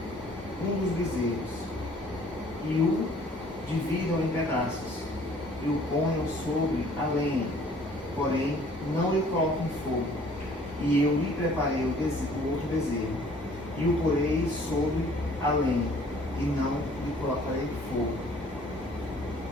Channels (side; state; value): both; normal; correlation 0.56